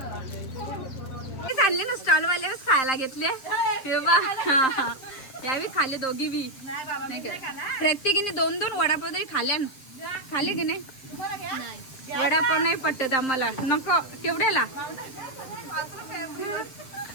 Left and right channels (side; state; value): right; late; 7.6 ms